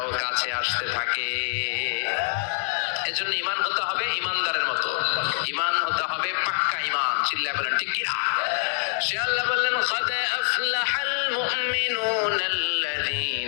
কাছে আসতে থাকে। এজন্য ঈমান হতে হবে ঈমানদারের মতো, ঈমান হতে হবে পাক্কা ঈমান। চিল্লায়ে বলেন ঠিক কি না? সে আল্লাহ বললেন, قد أفلح المؤمنون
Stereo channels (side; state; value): right; silent; digital silence